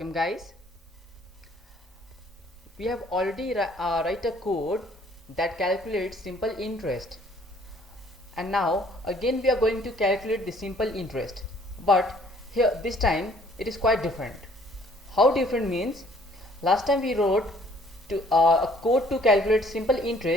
guys. We have already write a code that calculates simple interest, and now again we are going to calculate the simple interest, but here this time it is quite different. How different means, last time we wrote a code to calculate simple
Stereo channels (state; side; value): normal; both; correlation 0.59